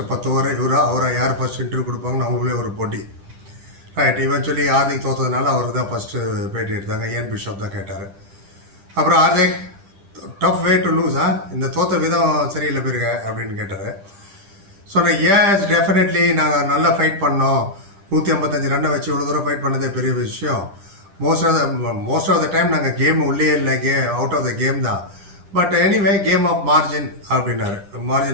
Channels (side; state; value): left; late; 10 ms